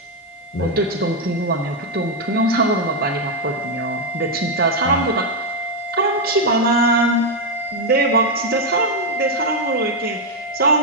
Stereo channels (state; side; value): normal; both; correlation 0.02